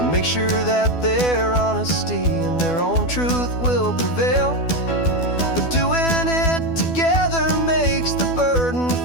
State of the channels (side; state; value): right; late; 12 ms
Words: make sure that their honesty and their own truth will prevail. But doing it together makes the burden